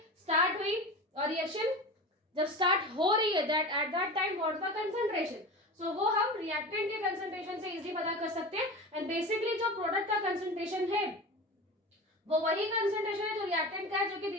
स्टार्ट हुई, और रिएक्शन जब स्टार्ट हो रही है, that at that time what the concentration. So वो हम रिएक्टेंट के कंसंट्रेशन से इजीली पता कर सकते हैं। एंड बेसिकली जो प्रोडक्ट का कंसंट्रेशन है वो वही कंसंट्रेशन है जो रिएक्टेंट का है, जो कि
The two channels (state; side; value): normal; both; correlation 0.30